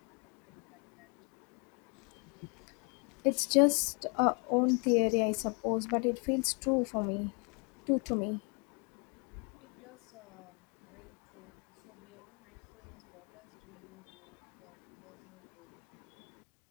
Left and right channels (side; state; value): right; quieter; 35.2 dB